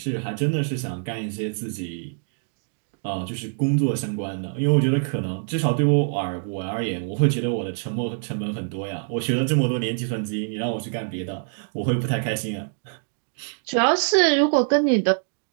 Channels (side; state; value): left; silent; digital silence